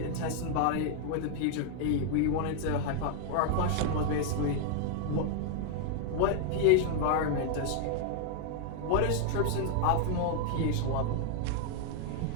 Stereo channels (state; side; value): different; both; correlation 0.00